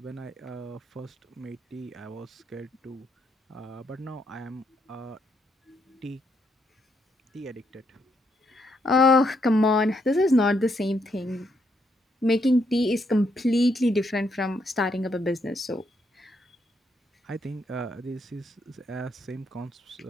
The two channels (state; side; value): normal; both; correlation 0.76